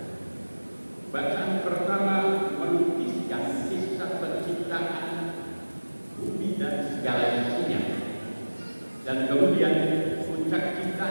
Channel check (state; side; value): inverted; both; correlation -1.00